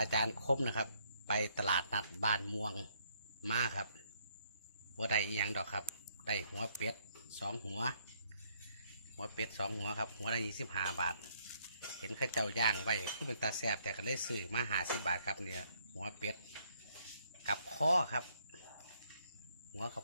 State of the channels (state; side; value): inverted; both; correlation -0.69